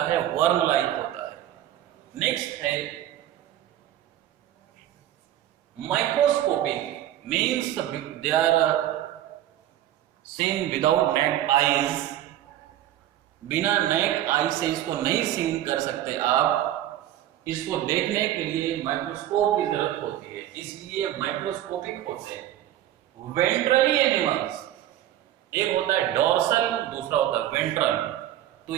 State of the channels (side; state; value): left; quieter; 12.7 dB